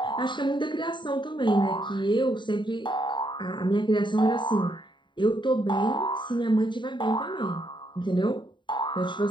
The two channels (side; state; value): right; late; 0.23 ms